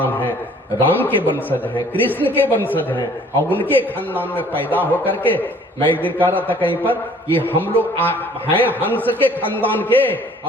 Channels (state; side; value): normal; both; correlation 0.55